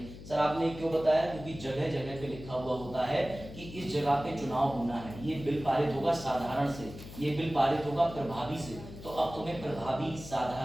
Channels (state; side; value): noise; left; hum, 14 dB below the sound